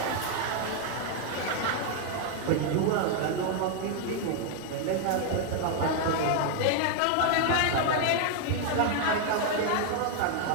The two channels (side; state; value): both; different; correlation 0.00